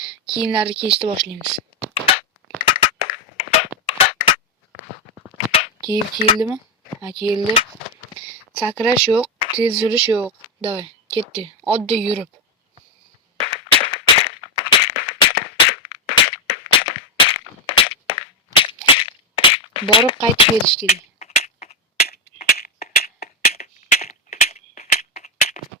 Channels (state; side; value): normal; both; correlation 0.07